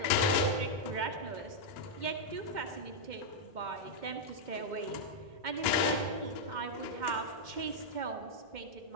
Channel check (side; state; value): left; late; 2.1 ms